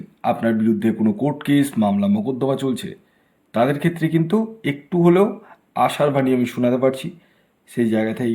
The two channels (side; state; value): both; identical; correlation 1.00